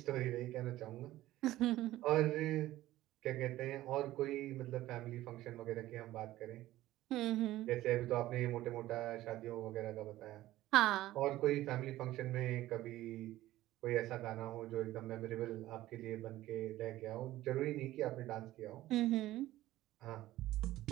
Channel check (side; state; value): left; quieter; 15.5 dB